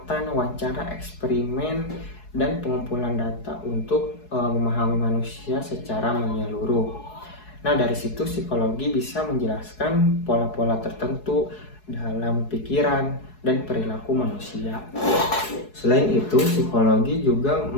wawancara, eksperimen, dan pengumpulan data untuk memahami manusia secara menyeluruh. Nah, dari situ psikologi bisa menjelaskan pola-pola tertentu dalam pikiran dan perilaku manusia. Selain itu, psikologi juga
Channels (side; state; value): right; late; 4.7 ms